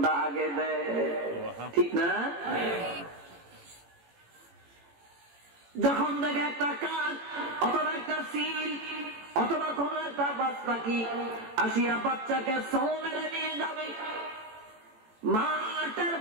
আগে দেয়, ঠিক না? যখন দেখে একটা কাক অথবা একটা সিল অথবা কোন একটা বাজ পাখি আসিয়া বাচ্চাকে সৌ মেরে নিয়ে যাবে, মাটার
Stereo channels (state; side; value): late; left; 18 ms